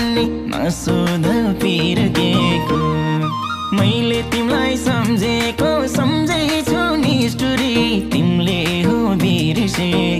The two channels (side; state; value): both; identical; correlation 1.00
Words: नसोध पिर केको मैले तिमीलाई सम्झेको सम्झैछु निष्ठुरी तिमीले हो